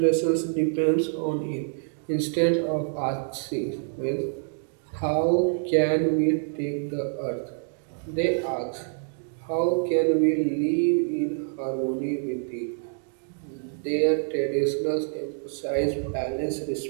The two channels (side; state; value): left; silent; digital silence